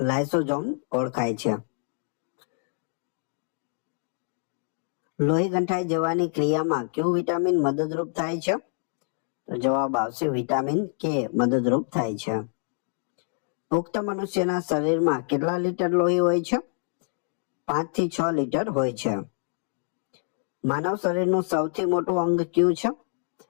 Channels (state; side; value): silent; right; 61 dB below the other